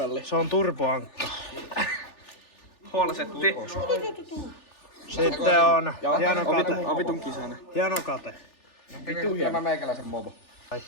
Se on turboankka. Holsetti. Sitten on hieno kate. On vitun kisainen. Hieno kate. Vittu hieno meikäläisen mobo. Ai.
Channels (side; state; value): right; late; 3.4 ms